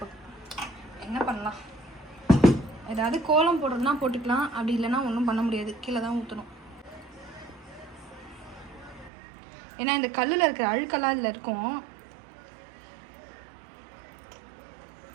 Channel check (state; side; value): drops out; left; at 9.1 s